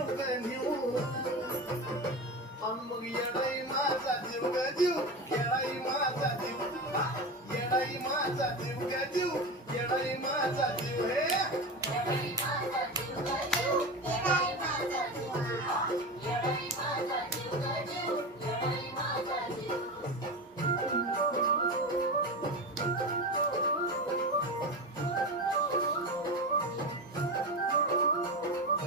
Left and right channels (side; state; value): both; normal; correlation 0.23